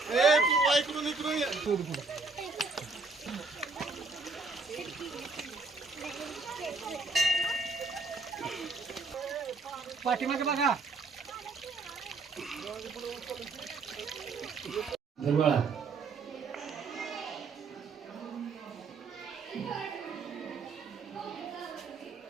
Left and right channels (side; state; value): left; quieter; 4.0 dB